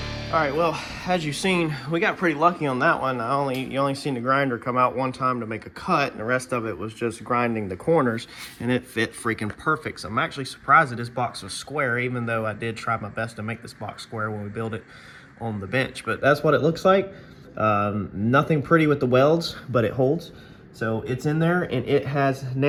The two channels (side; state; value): both; identical; correlation 1.00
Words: All right, well, as you've seen, we got pretty lucky on that one. You only seen the grinder come out one time to make a cut, and the rest of it was just grinding the corners, and it fit freaking perfect. So I'm actually surprised that this box was square, even though I did try my best to make this box square when we built it on the bench. But that's what it looks like. Nothing pretty with the welds, but it holds. So it's in there, and it has